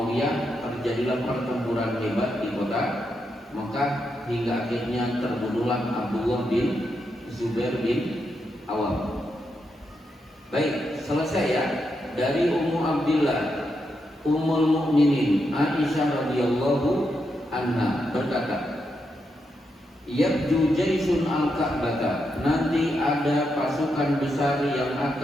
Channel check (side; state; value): both; normal; correlation 0.83